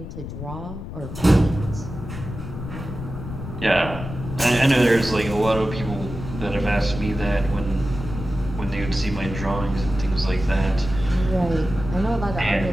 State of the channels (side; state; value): left; noise; rumble, 9 dB below the sound